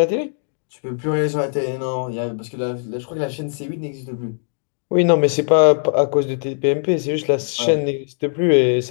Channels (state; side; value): silent; right; 64 dB below the other